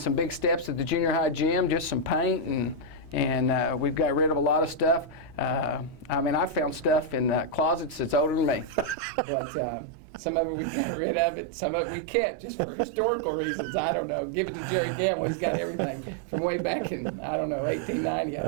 big steps at the junior high gym, just some paint, and we've got rid of a lot of stuff. I mean, I found stuff in closets that's older than me, but some of it we got rid of it, some of it we kept just for historical reasons. I don't know. Give it to Jerry Gamble. He's got everything from way back in, I don't know, 1890,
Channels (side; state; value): left; drops out; at 9.0 s